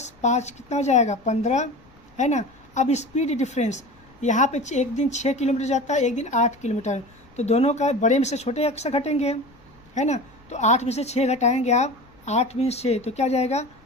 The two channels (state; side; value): noise; left; rumble, 28 dB below the sound